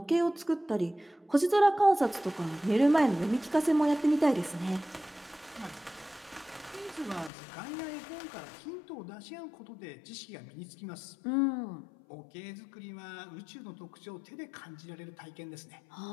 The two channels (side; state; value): right; drops out; at 7.3 s